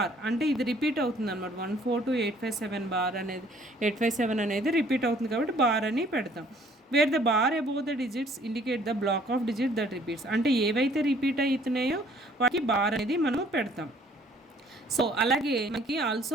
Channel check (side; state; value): both; normal; correlation 0.59